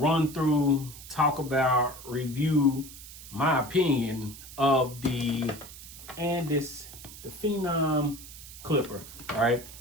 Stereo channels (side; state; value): right; noise; hiss, 15 dB below the sound